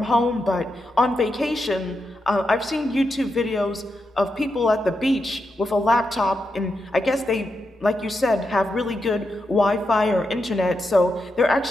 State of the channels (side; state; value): both; normal; correlation 0.85